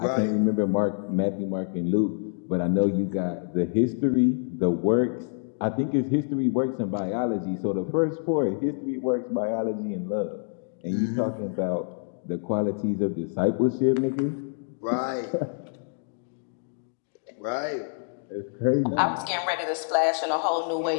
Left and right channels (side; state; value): right; silent; digital silence